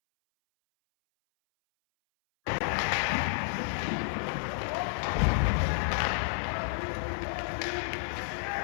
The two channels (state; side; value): silent; right; 57 dB below the other